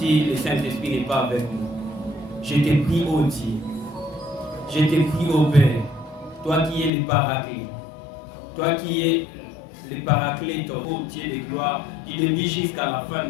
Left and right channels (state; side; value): drops out; right; at 6.9 s